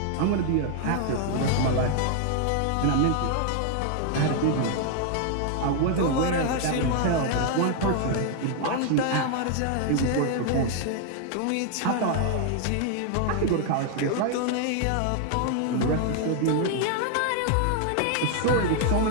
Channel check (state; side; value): different; both; correlation 0.00